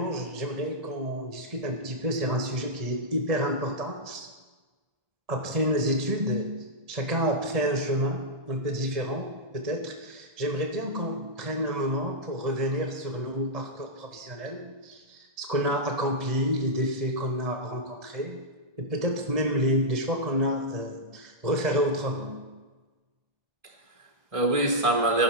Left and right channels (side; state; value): left; late; 1.9 ms